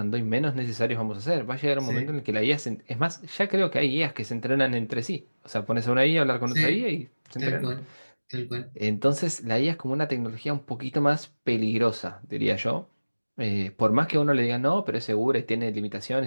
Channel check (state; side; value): inverted; both; correlation -1.00